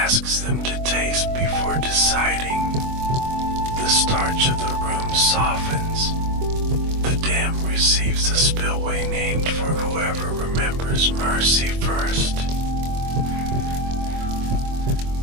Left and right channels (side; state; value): left; late; 24 ms